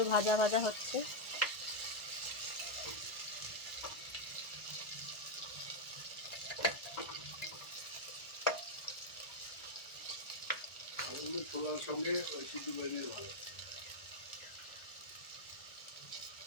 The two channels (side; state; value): right; late; 1.4 ms